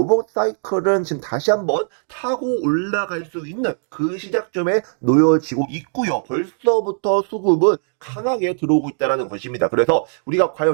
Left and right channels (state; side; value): silent; left; digital silence